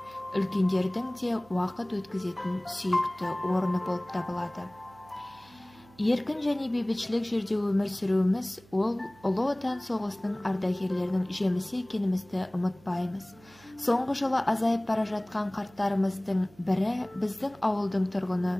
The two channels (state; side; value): noise; right; hum, 26 dB below the sound